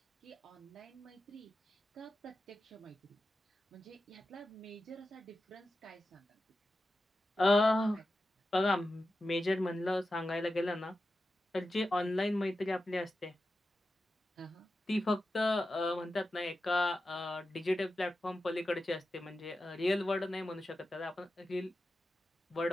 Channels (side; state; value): both; normal; correlation 0.92